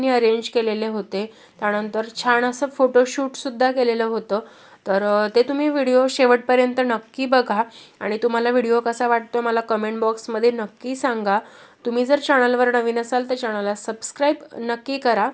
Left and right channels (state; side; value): identical; both; correlation 1.00